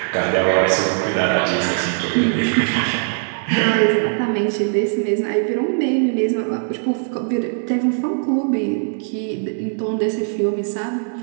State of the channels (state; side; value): silent; left; digital silence